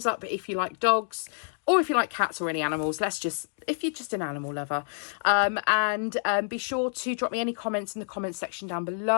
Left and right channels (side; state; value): right; silent; digital silence